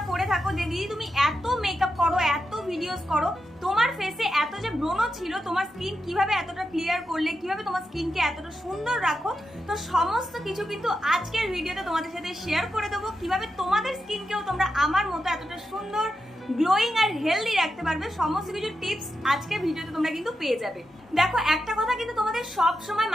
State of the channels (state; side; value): normal; both; correlation 0.87